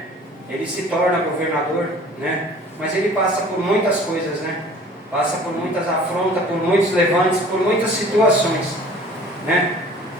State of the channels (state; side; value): normal; both; correlation 0.48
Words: Ele se torna governador, né? Mas ele passa por muitas coisas, né? Passa por muitas afrontas, por muitos levantes, por muitas situações, né?